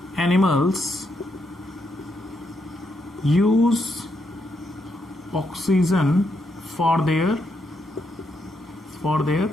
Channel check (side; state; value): both; normal; correlation 0.79